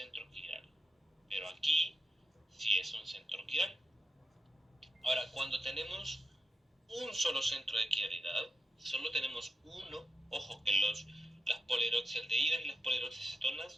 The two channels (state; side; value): normal; both; correlation 0.89